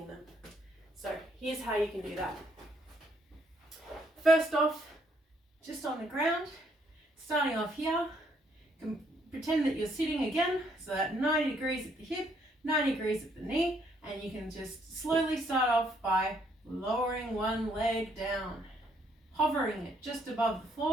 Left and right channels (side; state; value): both; normal; correlation 0.70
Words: them. So here's how you can do that. First off, just on the ground, starting off here, you can pretend that you're sitting again, so that 90 degrees at the hip, 90 degrees at the knee, and you can just slowly start off by lowering one leg down, hovering it just above the